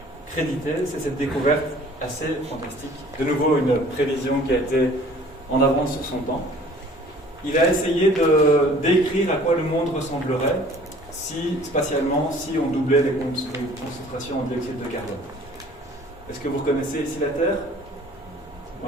crédité, c'est cette découverte assez fantastique. De nouveau, une prévision qui a été en avance sur son temps. Il a essayé de décrire à quoi le monde ressemblerait spatialement, si on doublait les concentrations en dioxyde de carbone. Est-ce que vous reconnaissez ici la Terre?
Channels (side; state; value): both; normal; correlation 0.51